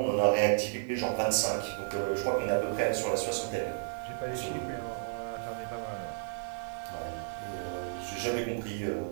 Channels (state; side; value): silent; left; digital silence